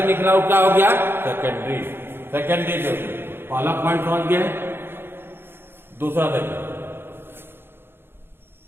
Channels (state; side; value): late; left; 0.11 ms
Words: निकला वो क्या हो गया? सेकेंडरी। Secondary wavelet. पहला पॉइंट समझ गए। दूसरा देखिए,